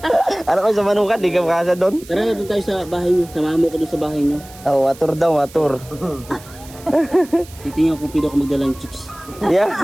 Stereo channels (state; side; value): noise; right; hiss, 20 dB below the sound